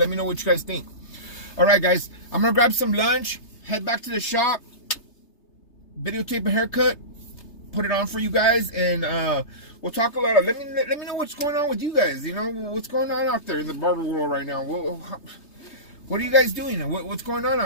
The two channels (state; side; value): late; right; 3.3 ms